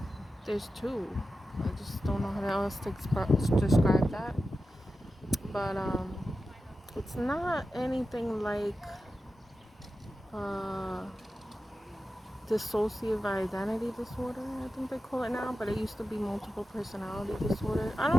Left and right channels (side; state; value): both; normal; correlation 0.92